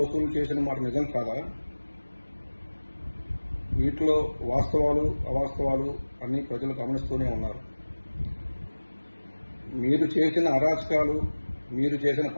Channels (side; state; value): both; inverted; correlation -1.00